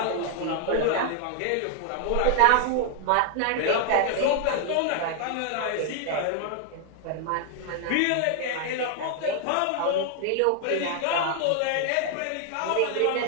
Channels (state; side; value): different; both; correlation 0.00